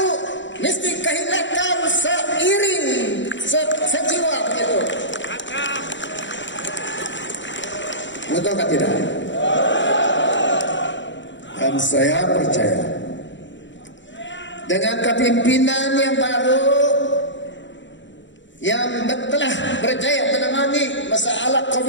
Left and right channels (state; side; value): late; right; 0.54 ms